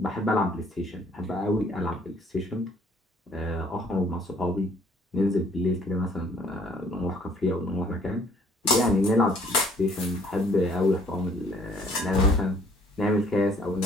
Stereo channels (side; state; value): both; normal; correlation 0.60